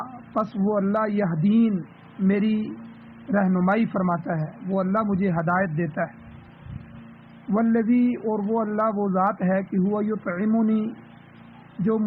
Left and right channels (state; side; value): identical; both; correlation 1.00